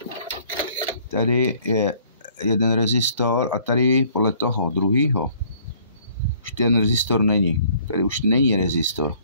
tady je jeden rezistor a tady podle toho druhýho už ten rezistor není. Tady už není rezistor.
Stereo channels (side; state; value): both; inverted; correlation -0.59